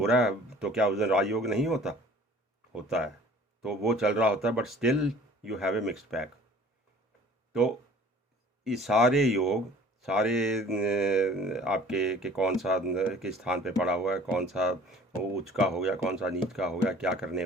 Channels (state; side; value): normal; both; correlation 0.50